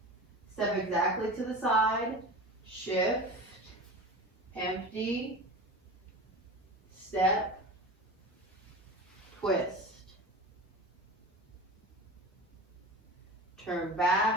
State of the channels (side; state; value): both; normal; correlation 0.32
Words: step exactly to the side, shift, empty, step, twist. Turn